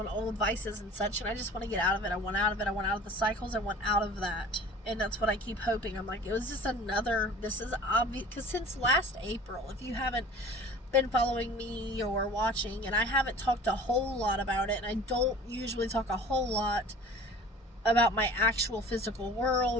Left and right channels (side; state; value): both; normal; correlation 0.43